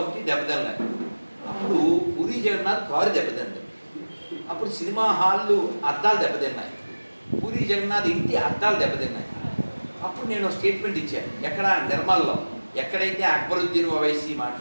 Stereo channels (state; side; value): inverted; both; correlation -1.00